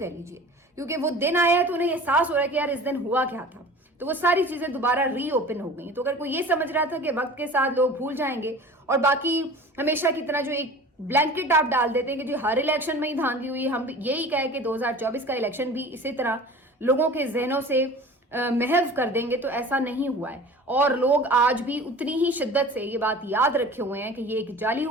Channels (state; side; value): normal; both; correlation 0.40